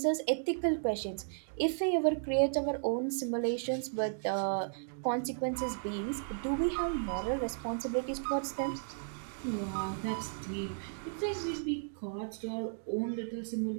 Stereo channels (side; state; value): left; silent; digital silence